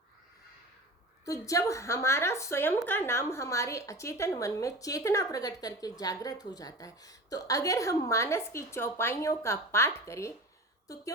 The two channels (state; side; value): normal; both; correlation 0.35